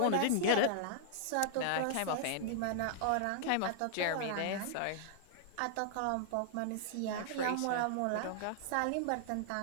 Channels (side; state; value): both; different; correlation -0.01